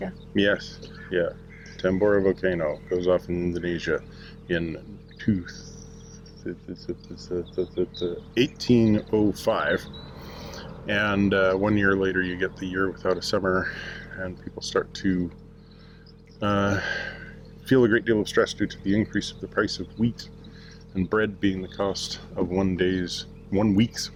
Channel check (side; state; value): both; identical; correlation 1.00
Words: Yes. Yeah. Tambora volcano goes off in Indonesia in 1805. And 1 year later you get the year without a summer, and people start to feel a great deal of stress due to the increase of the price of wheat, and bread being the cost of 1 week's